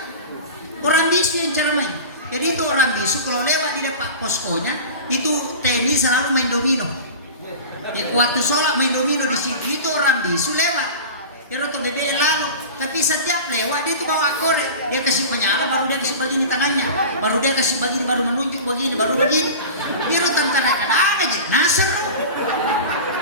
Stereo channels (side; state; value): both; inverted; correlation -0.33